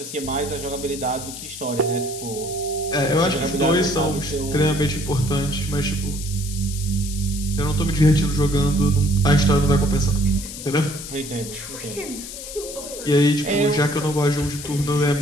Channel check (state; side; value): noise; left; hiss, 10 dB below the sound